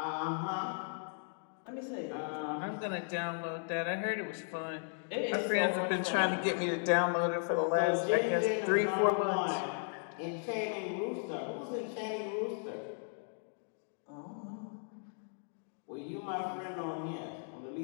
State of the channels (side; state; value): right; silent; 54 dB below the other